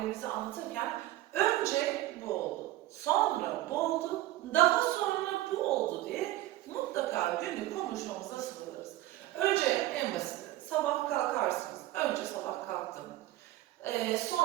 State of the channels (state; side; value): quieter; left; 15.7 dB